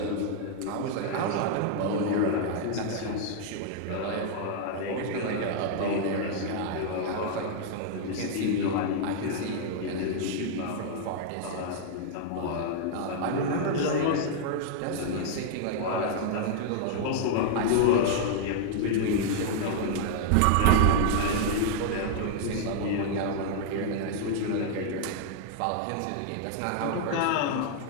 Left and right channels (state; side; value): different; both; correlation 0.00